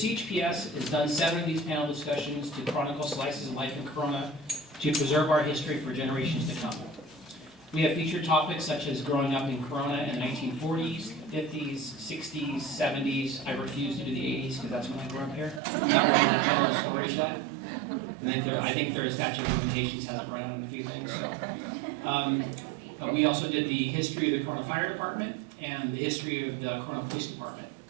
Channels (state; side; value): drops out; left; at 15.6 s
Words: has done 7 of these panel discussions to chronicle slices of life in Corona to preserve our history for generations to come. We have featured topics such as growing up in Corona in the 1940s, 50s, 60s, 70s. I refuse to do the 80s because that's when I grew up here. I'm not ready to tell those stories yet. I think their statute of limitations hasn't run out on a few things. So, but we also did the history of the Corona Fire Department and the history of the Corona Police Department.